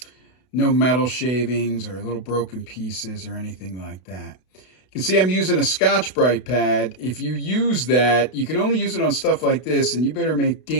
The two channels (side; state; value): right; late; 32 ms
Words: No metal shavings or little broken pieces or anything like that. You can see I'm using a Scotch-Brite pad. If you use that, you can only use it on stuff like this, and you better make